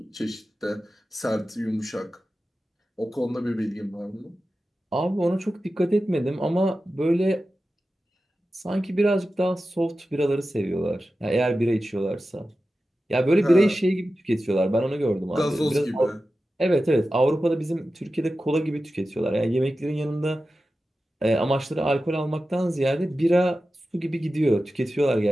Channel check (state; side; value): normal; both; correlation 0.93